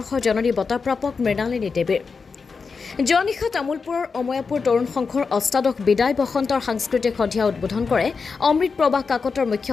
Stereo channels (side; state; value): right; quieter; 5.0 dB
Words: জননী বঁটাপ্ৰাপক মৃণালিনী দেৱীৰ যোৱা নিশা তামুলপুৰৰ অময়াপুৰ তৰুণ সংঘৰ অষ্টাদশ বিদায় বসন্তৰ সাংস্কৃতিক সন্ধিয়া উদ্বোধন কৰে অমৃত প্ৰভা কাকতৰ মুখ্য